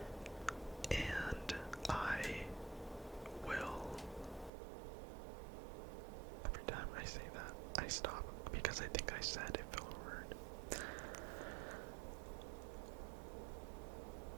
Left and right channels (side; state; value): left; drops out; at 4.5 s